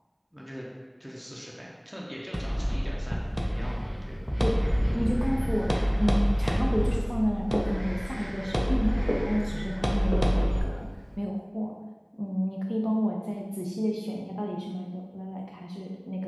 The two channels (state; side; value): identical; both; correlation 1.00